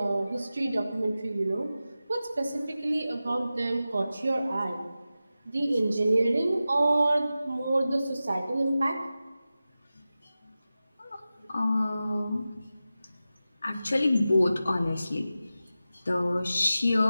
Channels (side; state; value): both; inverted; correlation -0.94